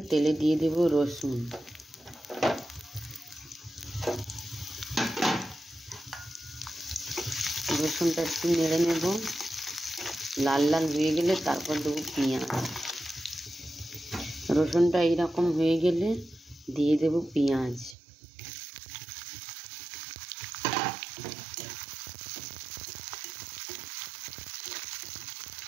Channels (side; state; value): left; drops out; at 17.9 s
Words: তেলে দিয়ে দেব রসুন। রসুনটা একটু নেড়ে নেব, লাল লাল হয়ে গেলে তারপর দেবো পেঁয়াজ। রসুনটা এইরকম হয়ে গেলে দিয়ে দেব পেঁয়াজ।